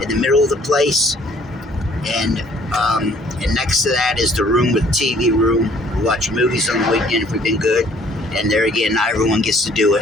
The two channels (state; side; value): normal; both; correlation 0.59